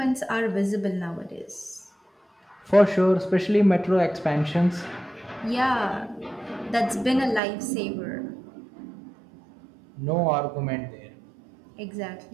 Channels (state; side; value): drops out; left; at 7.4 s